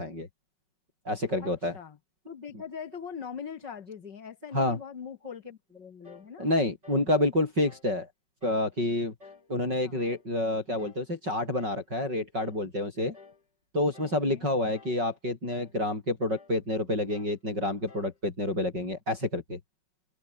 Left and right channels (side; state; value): left; late; 5.4 ms